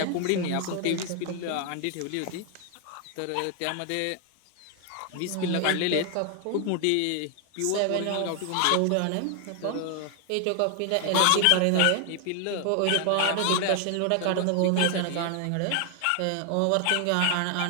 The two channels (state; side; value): different; both; correlation 0.00